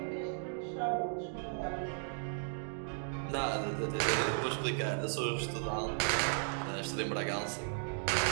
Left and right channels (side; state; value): left; silent; digital silence